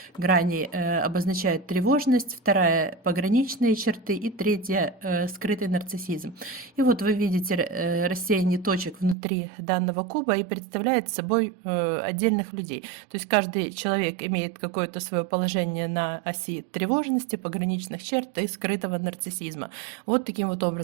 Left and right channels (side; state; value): left; drops out; at 9.2 s